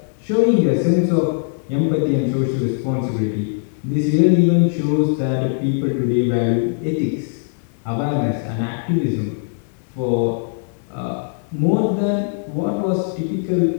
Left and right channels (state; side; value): silent; right; digital silence